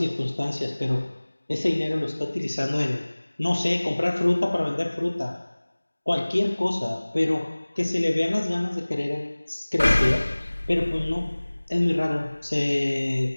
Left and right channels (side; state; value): both; inverted; correlation -1.00